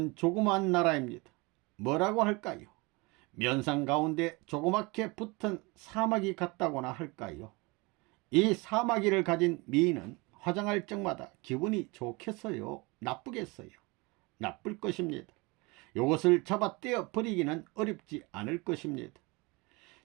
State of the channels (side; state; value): left; quieter; 25.9 dB